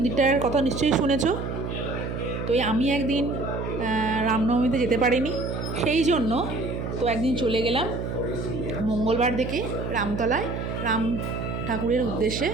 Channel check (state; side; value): noise; right; hum, 5 dB below the sound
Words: কথা নিশ্চয়ই শুনেছো। তো আমি একদিন রামনবমীতে যেতে পারিনি, সেই জন্য তো একদিন চলে গেলাম মঙ্গলবার দেখে রামতলায় রাম ঠাকুরের উদ্দেশ্যে